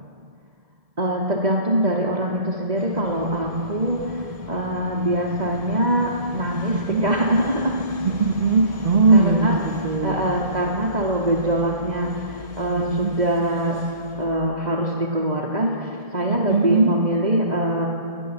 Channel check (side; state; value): left; late; 1.7 ms